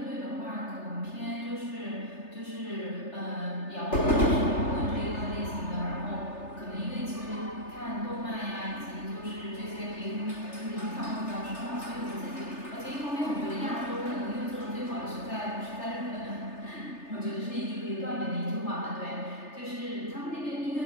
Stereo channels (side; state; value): right; late; 3.3 ms